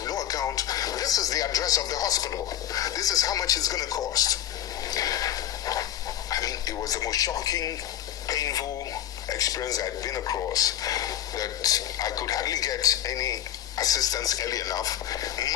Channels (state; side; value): quieter; right; 11.4 dB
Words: have no account. This is the address of the hospital. This is how much it's going to cost. I mean, it was the most shocking, painful experience I'd been across, that I could hardly get any assistance early enough.